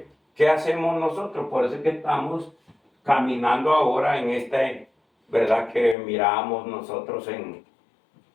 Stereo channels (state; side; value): drops out; right; at 6.0 s